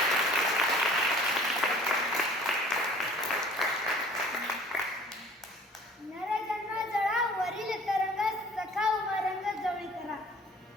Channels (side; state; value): both; normal; correlation 0.50